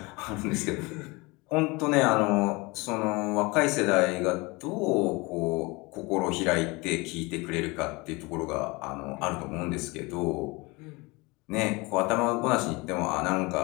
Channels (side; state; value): right; quieter; 25.1 dB